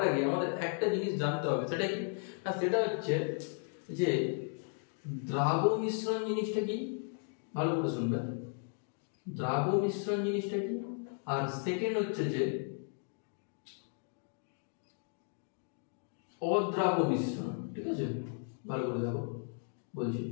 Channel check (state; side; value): silent; right; 54 dB below the other